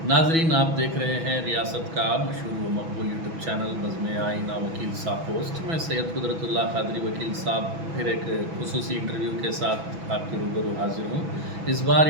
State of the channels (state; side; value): late; left; 6.1 ms